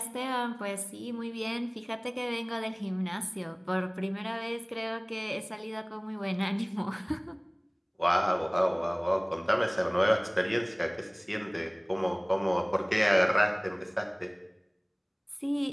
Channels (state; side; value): identical; both; correlation 1.00